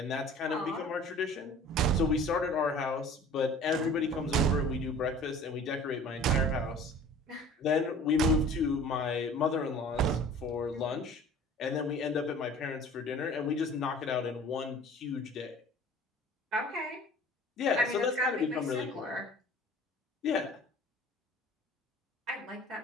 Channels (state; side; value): normal; both; correlation 0.46